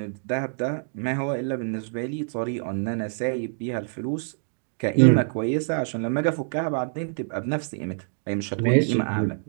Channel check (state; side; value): silent; left; digital silence